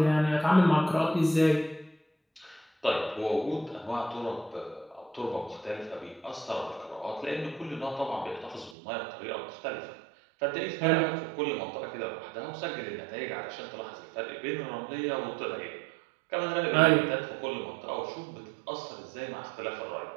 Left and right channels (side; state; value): left; drops out; at 8.8 s